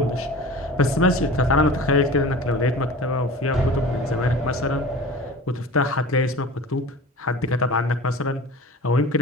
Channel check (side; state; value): both; normal; correlation 0.37